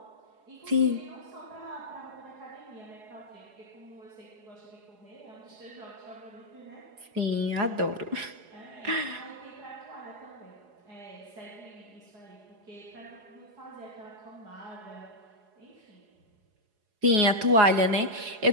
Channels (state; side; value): late; left; 4.8 ms